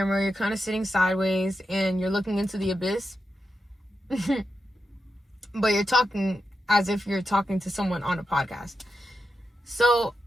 you're kind of sitting sideways and you're looking into the abyss. But you're talking as if you're talking to someone on a podcast. So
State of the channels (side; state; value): both; normal; correlation 0.88